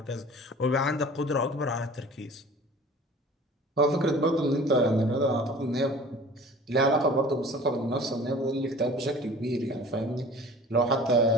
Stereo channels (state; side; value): normal; both; correlation 0.44